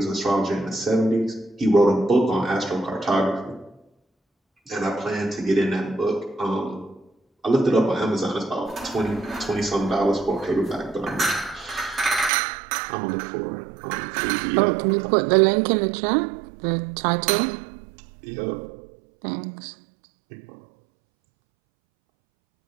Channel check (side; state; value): left; drops out; at 12.3 s